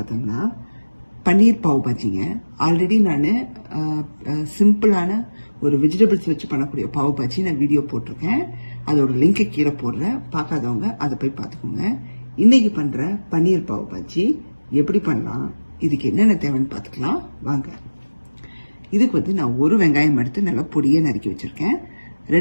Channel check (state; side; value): inverted; both; correlation -1.00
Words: பன்னீர் பாவ் பாஜிங்க. ஆல்ரெடி நான் சிம்பிளான ஒரு வெஜிடபிள்ஸ் வச்சு பண்ணக்கூடிய பாவ் பாஜி நான் வீடியோ போட்டிருக்கேன். அதோட லிங்கை கீழே போடுறேன், பார்க்காதவங்க அதை போய் பார்த்துக்கோங்க. இன்றைக்கி பண்ணுற பன்னீர் பாவ் பாஜி எப்படி பண்ணலாம், இதுக்கு என்னென்ன தேவைன்னு பார்த்துக்கலாம் வாங்க. இதுக்கு நான் ஒரு வெங்காயம் எடுத்து நல்லா பொடியை நறுக்கி வச்சுருக்கேன்.